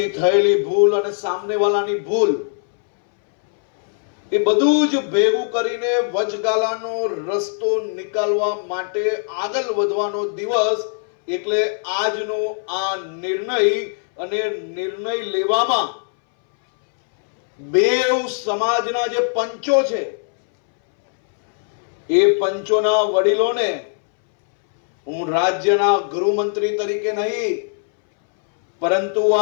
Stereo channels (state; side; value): silent; right; 63 dB below the other